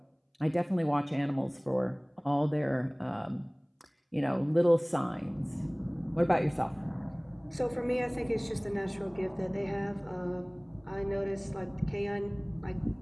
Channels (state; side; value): identical; both; correlation 1.00